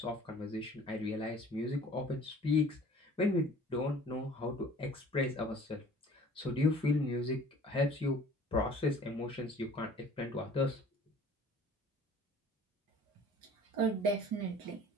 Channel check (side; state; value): both; normal; correlation 0.50